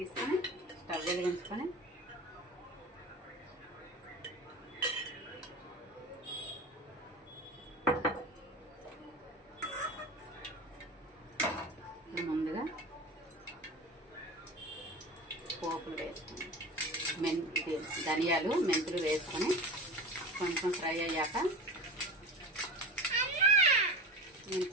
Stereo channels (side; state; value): both; normal; correlation 0.31